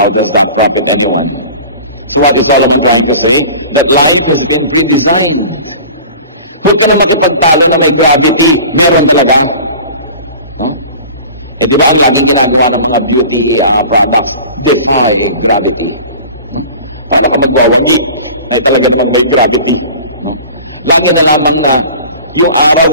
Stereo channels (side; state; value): both; inverted; correlation -0.41